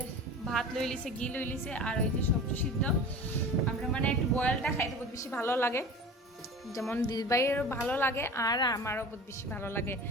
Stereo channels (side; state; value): both; normal; correlation 0.36